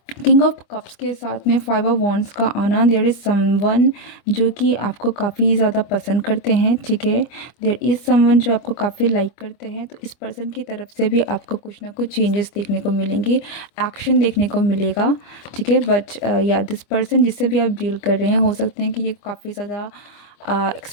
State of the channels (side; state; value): right; late; 25 ms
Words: किंग ऑफ कप्स के साथ में 5 ऑफ वॉन्ड्स का आना, देयर इज़ समवन जो कि आपको काफ़ी ज़्यादा पसंद करते हैं। ठीक है, देयर इज़ समवन जो आपको काफ़ी लाइक करते हैं, तो इस पर्सन की तरफ से भी आपको कुछ ना कुछ चेंजेस देखने को मिलेंगे, एक्शन देखने को मिलेगा। ठीक है, बट या दिस पर्सन जिससे भी आप डील कर रहे हैं, हो सकते हैं कि ये काफ़ी ज़्यादा